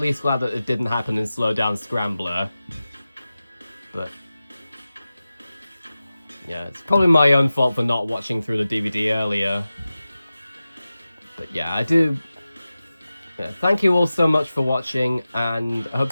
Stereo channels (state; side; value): inverted; both; correlation -0.95